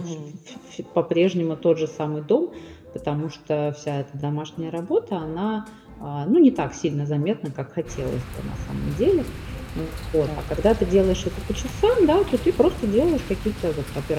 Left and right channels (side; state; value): both; identical; correlation 1.00